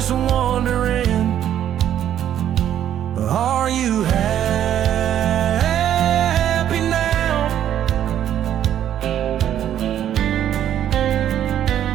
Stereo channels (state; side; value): quieter; left; 10.7 dB